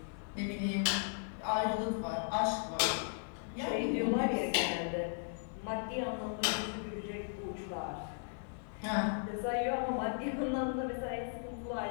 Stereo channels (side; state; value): right; silent; 53 dB below the other